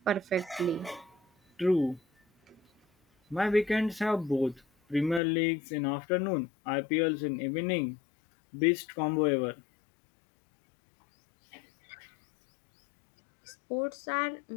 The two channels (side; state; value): right; drops out; at 5.2 s